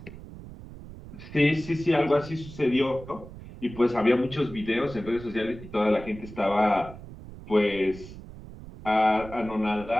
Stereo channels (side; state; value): right; noise; rumble, 15 dB below the sound